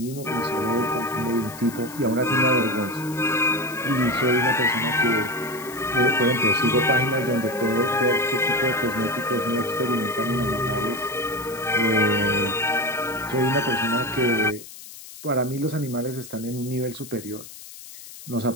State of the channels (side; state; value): left; noise; hiss, 15 dB below the sound